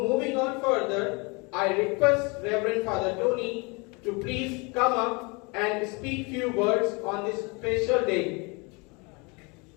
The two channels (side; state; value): right; quieter; 29.3 dB